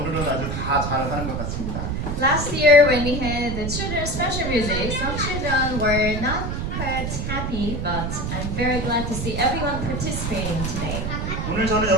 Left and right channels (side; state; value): right; noise; rumble, 3 dB below the sound